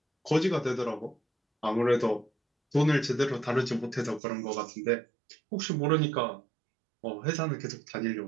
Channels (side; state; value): left; drops out; at 4.2 s